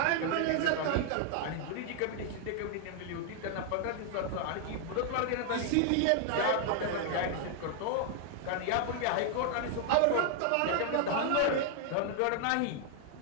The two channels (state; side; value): different; both; correlation 0.00